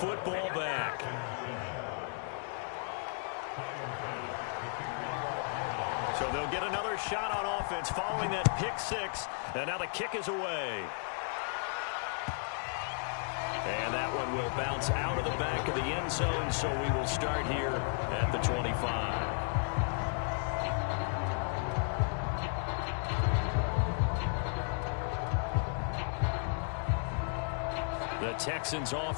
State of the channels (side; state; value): right; silent; 55 dB below the other